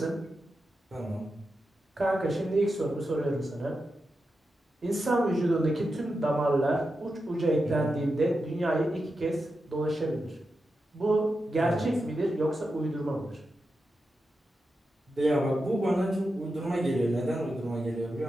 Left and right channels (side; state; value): both; normal; correlation 0.89